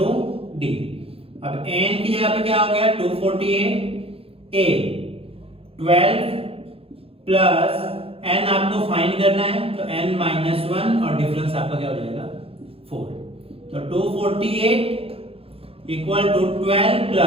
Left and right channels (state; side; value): late; left; 0.28 ms